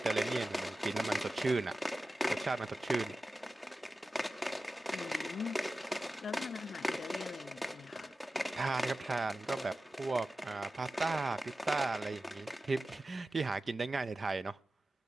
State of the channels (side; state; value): both; normal; correlation 0.94